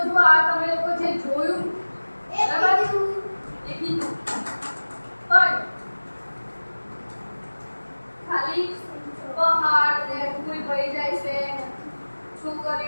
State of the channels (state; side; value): inverted; both; correlation -1.00